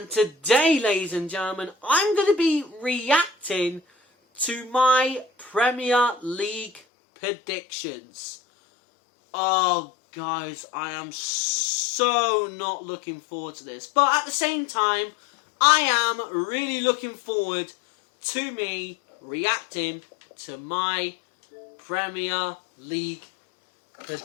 today, ladies and gentlemen, I'm going to be reacting to my Premier League predictions. Oh guys, I am so not looking forward to this. But at the same time, I am really looking forward to me reacting to my Premier League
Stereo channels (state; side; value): drops out; right; at 6.8 s